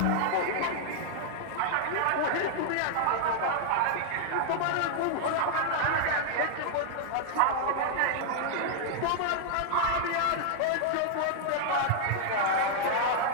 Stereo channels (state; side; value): different; both; correlation -0.01